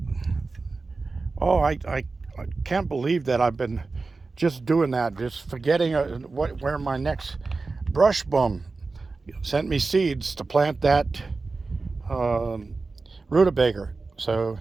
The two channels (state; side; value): quieter; left; 3.9 dB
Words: I can't believe that I've been just doing that, just forgetting where my next brush bum sent me seeds to plant that rutabaga. So